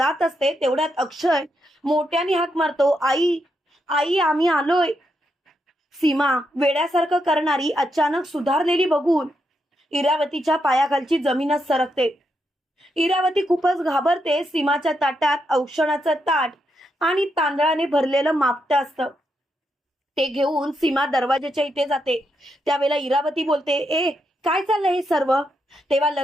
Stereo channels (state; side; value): normal; both; correlation 0.82